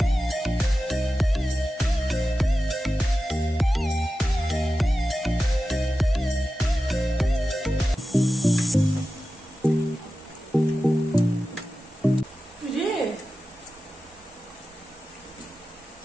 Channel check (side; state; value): both; normal; correlation 0.93